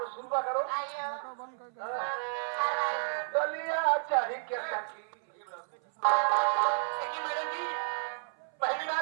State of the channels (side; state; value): left; silent; 57 dB below the other